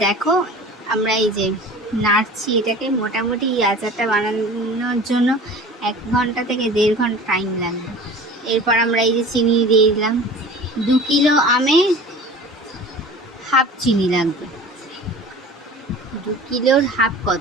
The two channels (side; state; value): both; normal; correlation 0.40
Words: দেখো, আমরা এই যে নাড়ছি এটাকে, মোটামুটি এই আচারটা বানানোর জন্য 1 ঘন্টা থেকে 1.5 ঘন্টা টাইম লাগবে। এরপর আমরা এই যে চিনি দিয়ে দিলাম। 2 কিলো আমে হাফ চিনি লাগবে। 2 কিলোর হাফ